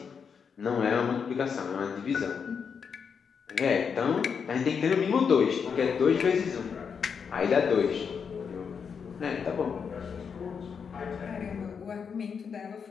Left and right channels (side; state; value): right; quieter; 6.4 dB